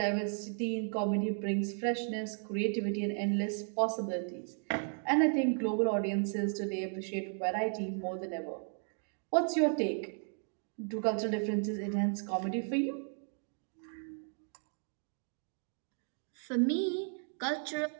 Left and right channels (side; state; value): left; silent; 55 dB below the other